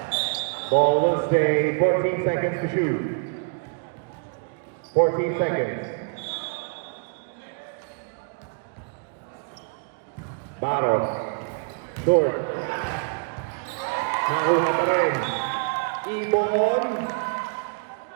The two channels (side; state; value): left; quieter; 36.7 dB